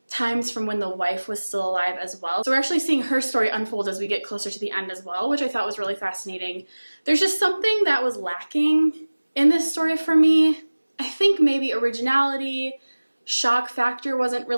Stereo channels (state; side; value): inverted; both; correlation -1.00